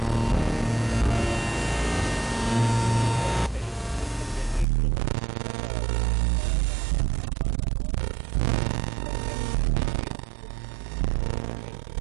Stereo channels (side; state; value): left; drops out; at 4.7 s